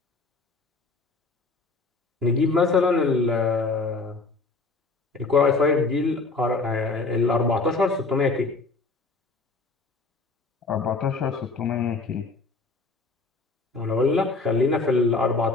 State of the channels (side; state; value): right; quieter; 3.7 dB